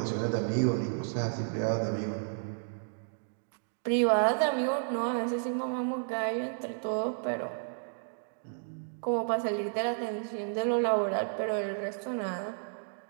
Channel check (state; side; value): silent; left; digital silence